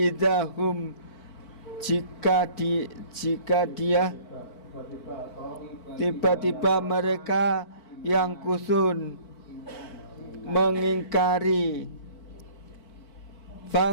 jika dia tiba-tiba mereka yang kusun mengingkari.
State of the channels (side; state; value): right; late; 4.5 ms